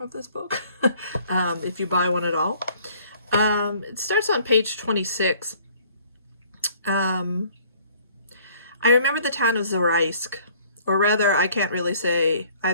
this book, if you buy one at all. It starts on page 26. I remember the town of Zaraisk, or rather, I can't really say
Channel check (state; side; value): inverted; both; correlation -0.57